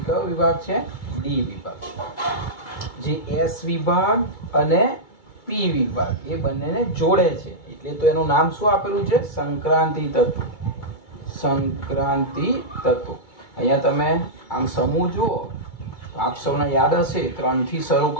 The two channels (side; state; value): right; late; 2.3 ms